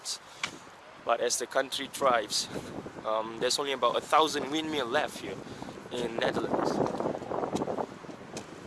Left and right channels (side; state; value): both; identical; correlation 1.00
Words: But as the country thrives, there's only about 1,000 windmills left here in Netherlands,